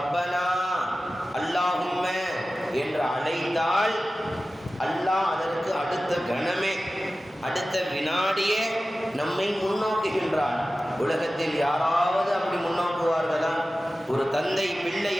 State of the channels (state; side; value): normal; both; correlation 0.95